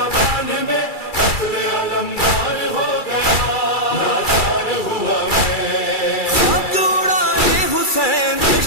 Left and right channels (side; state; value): right; late; 2.3 ms